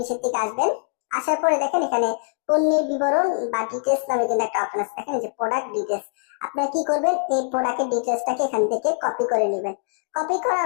দিকে আসবেন। আসার পরে দেখেন এখানে পণ্যের বিবরণ বা ডিটেলস নামে কিন্তু একটা অপশন আছে, দেখেন যে প্রোডাক্ট ডিটেলস। আপনারা কি করবেন, এই প্রোডাক্টের ডিটেলসটাকে এখান থেকে কপি করে নেবেন। কপি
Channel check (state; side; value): silent; right; digital silence